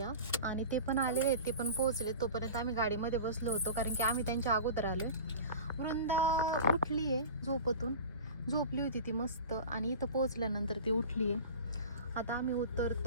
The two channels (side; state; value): both; inverted; correlation -0.35